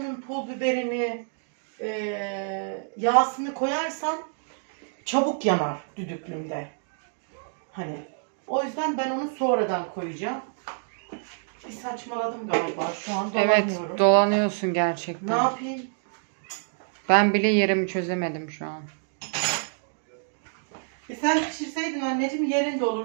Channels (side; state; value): left; silent; digital silence